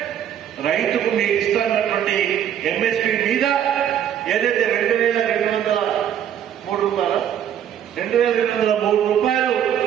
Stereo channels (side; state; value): left; quieter; 9.8 dB